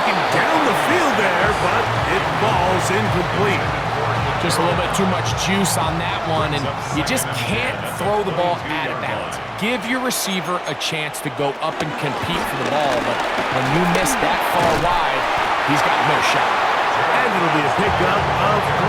down the field there, but it falls incomplete. Just a little bit too much juice on that one, and you just can't throw the ball out of bounds. Give your receiver a chance to go up and compete for the ball, but when you miss that far wide, he's got no shot. And it'll be a pickup of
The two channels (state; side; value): identical; both; correlation 1.00